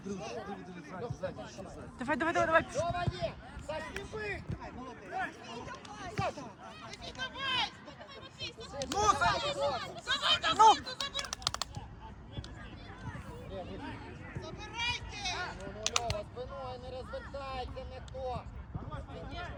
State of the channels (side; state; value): both; identical; correlation 1.00